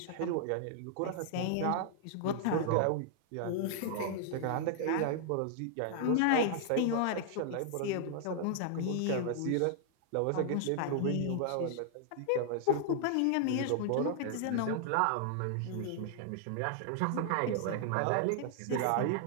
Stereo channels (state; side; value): different; both; correlation -0.01